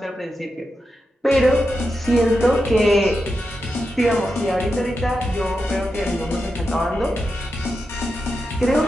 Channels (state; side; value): normal; both; correlation 0.88